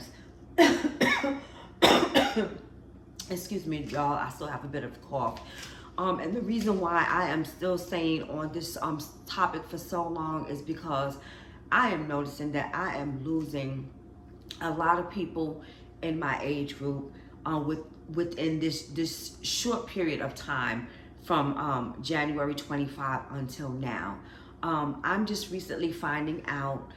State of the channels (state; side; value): identical; both; correlation 1.00